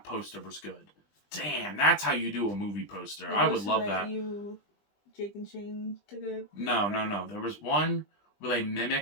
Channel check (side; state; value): right; late; 20 ms